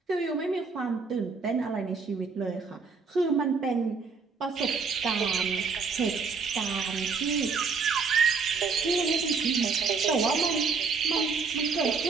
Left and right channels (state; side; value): quieter; left; 4.9 dB